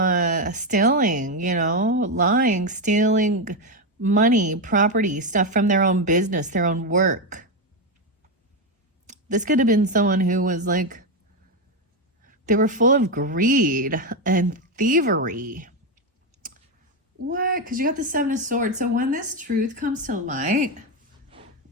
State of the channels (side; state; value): both; normal; correlation 0.08